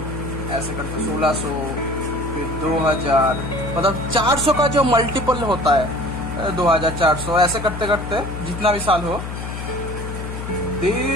ऐसे करके 1600, फिर 2000, मतलब 400 का जो मल्टीपल होता है 2400, ऐसे करते करते जितना भी साल हो,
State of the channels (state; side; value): noise; left; hum, 7 dB below the sound